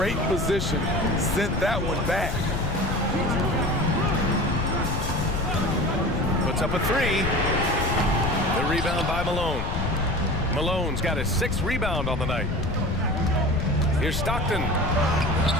position. Sent that one back. Puts up a 3. The rebound by Malone. Malone's got his 6th rebound on the night. Here's Stockton.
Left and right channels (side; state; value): left; noise; rumble, 3 dB below the sound